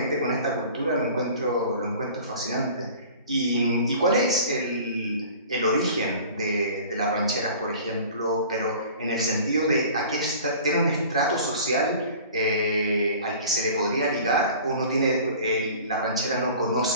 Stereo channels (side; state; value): both; inverted; correlation -0.44